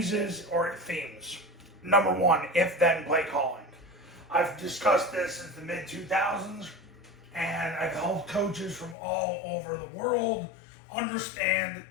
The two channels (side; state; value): right; drops out; at 9.0 s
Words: or themes. Number 1, if-then play calling. I've discussed this since the mid-2000s, and I've helped coaches from all over the world understand